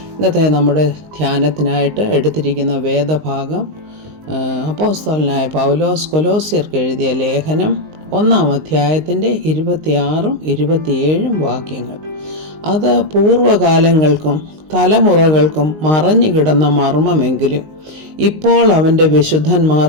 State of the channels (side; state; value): left; late; 19 ms